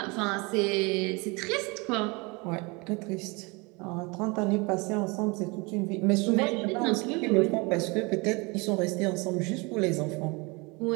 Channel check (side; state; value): left; quieter; 27.5 dB